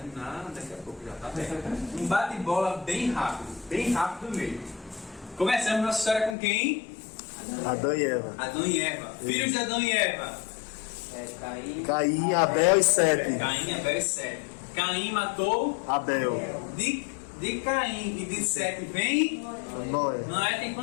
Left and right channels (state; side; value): drops out; right; at 6.4 s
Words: daqui a pouco, já tá bem. Um bate-bola bem rápido mesmo. Começamos nossa história com quem? Adão e Eva. Adão e Eva. Filhos de Adão e Eva. Caim, Abel e Sete. Caim, Abel e Sete. Caim matou Abel. de Caim e de Sete vem. Noé. Noé tem